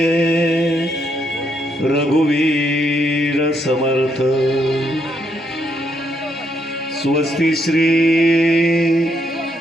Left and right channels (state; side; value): normal; both; correlation 0.76